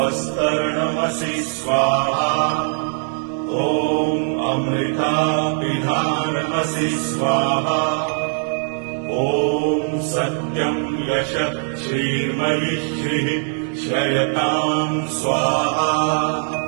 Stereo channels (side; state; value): left; silent; 65 dB below the other